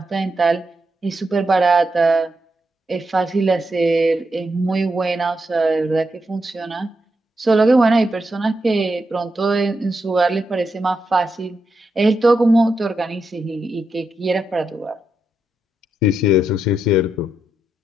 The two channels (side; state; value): both; normal; correlation 0.84